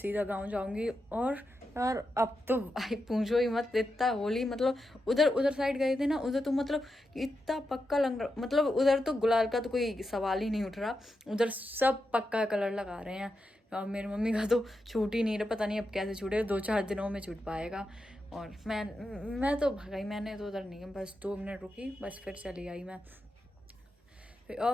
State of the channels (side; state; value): both; normal; correlation 0.87